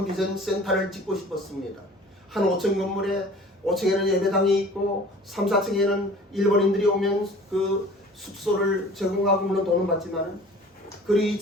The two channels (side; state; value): both; normal; correlation 0.46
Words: 비전 센터를 짓고 싶었습니다. 한 5층 건물에 5층에는 예배당이 있고 3, 4층에는 일본인들이 오면 그 숙소를 제공하고 물론 돈은 받지만, 그리고